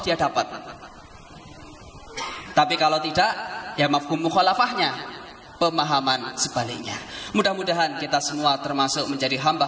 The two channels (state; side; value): identical; both; correlation 1.00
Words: dapat. Tapi kalau tidak, ya mafhum mukhalafahnya, pemahaman sebaliknya. Mudah-mudahan kita semua termasuk menjadi